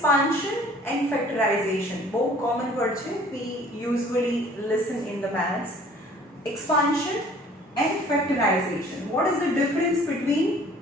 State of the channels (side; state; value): both; normal; correlation 0.52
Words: and factorization બહુ common word છે. We usually listen in the maths. Expansion and factorization. What is the difference between